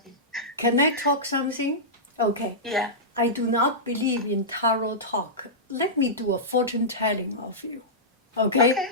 Can I talk something? Okay. Yeah. I do not believe in tarot talk. Let me do a fortune telling of you. Okay?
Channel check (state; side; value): normal; both; correlation -0.14